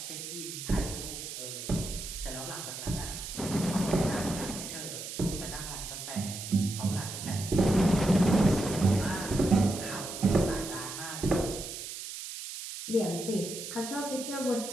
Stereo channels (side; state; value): right; noise; hiss, 8 dB below the sound